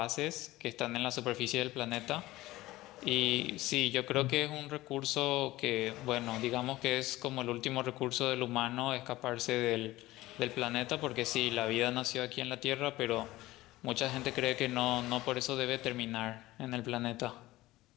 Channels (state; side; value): quieter; right; 17.7 dB